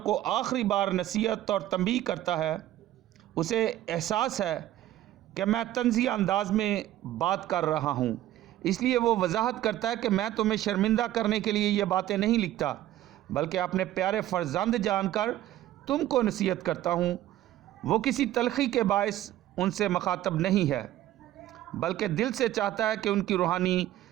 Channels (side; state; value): left; quieter; 13.8 dB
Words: کو آخری بار نصیحت اور تنبیہ کرتا ہے۔ اسے احساس ہے کہ میں طنزیہ انداز میں بات کر رہا ہوں، اس لیے وہ وضاحت کرتا ہے کہ میں تمہیں شرمندہ کرنے کے لیے یہ باتیں نہیں لکھتا، بلکہ اپنے پیارے فرزند جان کر تم کو نصیحت کرتا ہوں۔ وہ کسی تلخی کے باعث ان سے مخاطب نہیں ہے، بلکہ دل سے چاہتا ہے کہ ان کی روحانی